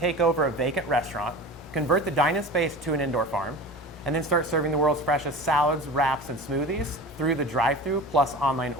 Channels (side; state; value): both; normal; correlation 0.34